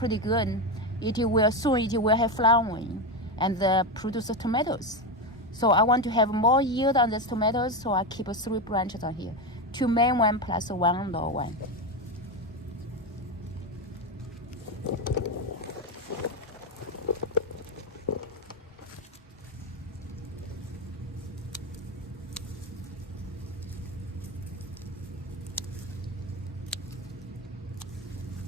good. It will have flowering and produce tomatoes. So I want to have more yield on these tomatoes, so I keep 3 branches on here. 2 main one plus 1 low one.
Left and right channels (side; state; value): both; normal; correlation 0.13